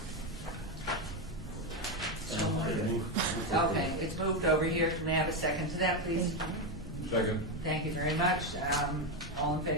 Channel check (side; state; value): both; normal; correlation 0.09